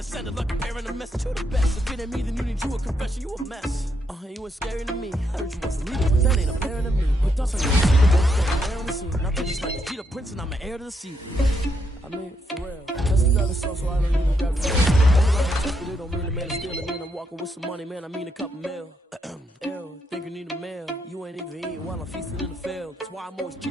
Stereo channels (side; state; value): both; normal; correlation 0.78